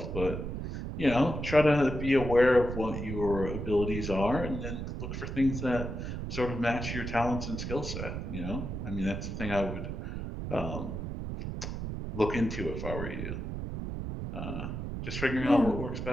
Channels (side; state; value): right; noise; rumble, 5 dB below the sound